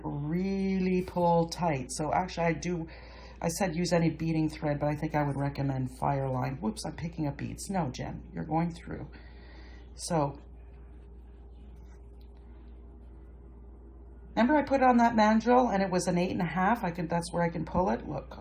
really pull tight. So actually I said use any beading thread, but I think I would recommend fireline. Whoops, I'm picking up beads. No, Jen, you're going through. So, remember I put it on that mandrel and it was an 8.5. That's where I can pull it.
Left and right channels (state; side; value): identical; both; correlation 1.00